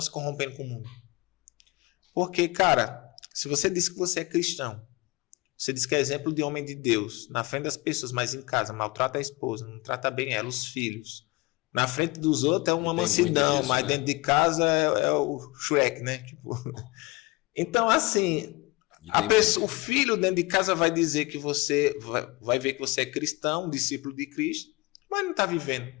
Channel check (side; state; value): right; quieter; 23.2 dB